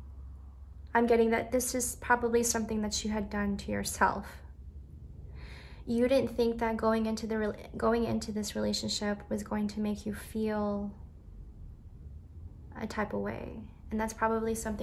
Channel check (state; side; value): identical; both; correlation 1.00